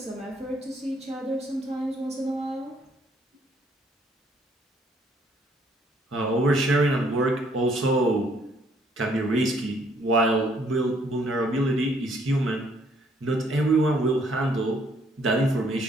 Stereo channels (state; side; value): normal; both; correlation 0.66